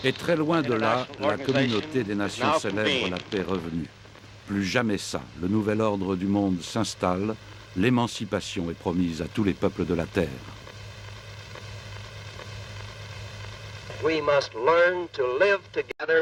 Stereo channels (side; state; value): both; identical; correlation 1.00